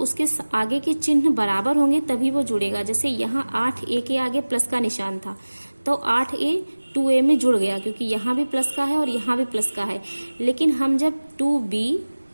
आगे के चिन्ह बराबर होंगे तभी वो जुड़ेगा। जैसे यहाँ 8a के आगे प्लस का निशान था तो 8a 2a में जुड़ गया, क्योंकि यहाँ भी प्लस का है और यहाँ भी प्लस का है। लेकिन हम जब 2b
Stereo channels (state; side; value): inverted; both; correlation -1.00